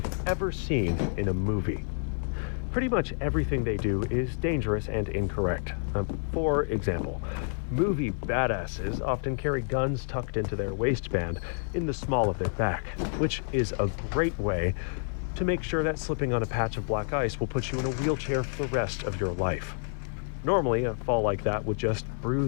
ever seen in a movie. Pretty much everything they do is dangerous and incorrect. For example, movie badasses often carry guns tucked into their waistband in the small of their back, which is a great way to make sure that slipping on a patch of black ice will put you in a wheelchair for the rest of your life. Normally, a fall like that would just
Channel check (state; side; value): silent; right; digital silence